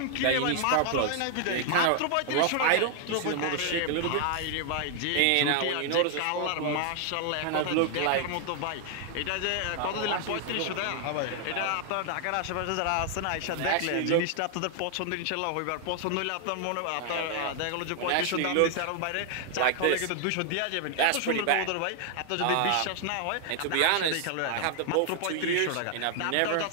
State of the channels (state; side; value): different; both; correlation 0.00